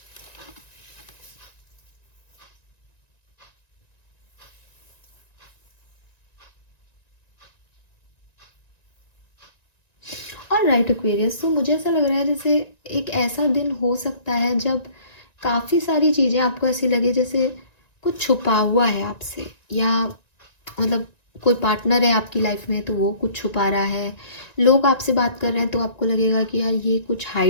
Alright Aquarius, तो मुझे ऐसा लग रहा है जैसे एक ऐसा दिन हो सकता है जब काफ़ी सारी चीज़ें आपको ऐसी लगे जैसे कुछ छुपा हुआ है आपसे, या मतलब कोई पार्टनर है आपकी लाइफ में तो वो कुछ छुपा रहा है। लोग आपसे बात कर रहे हैं तो आपको लगेगा कि यार ये कुछ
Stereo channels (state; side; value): late; right; 1.9 ms